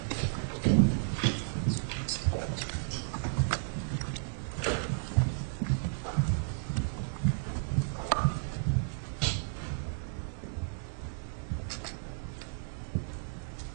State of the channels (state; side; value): silent; left; digital silence